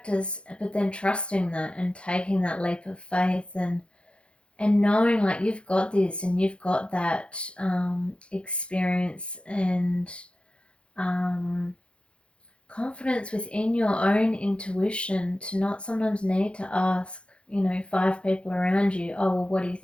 but then trusting that and taking that leap of faith, and knowing like you've got this and you've got that experience and um, confidence within your own intuition, to not sometimes need to ask, five people around you, oh, well, what do you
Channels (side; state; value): right; late; 0.058 ms